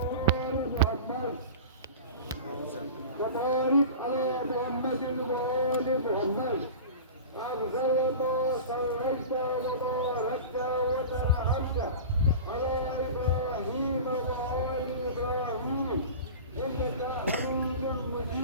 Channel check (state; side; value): inverted; both; correlation -0.33